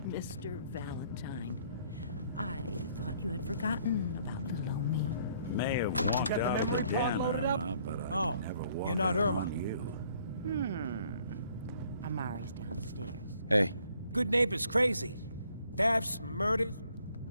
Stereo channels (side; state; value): both; inverted; correlation -0.63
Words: Mr. Valentine, I thought you had forgotten about little old me. May have walked out of the den, Irma, but I never walked you're not Irma. on you. Amari's downstairs. Hey. Good neighbors crazy. Thefts, murders.